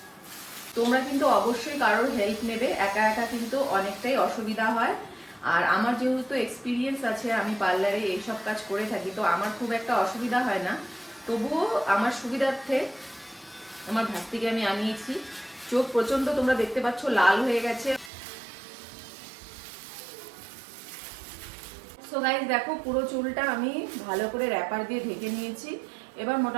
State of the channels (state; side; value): drops out; left; at 18.1 s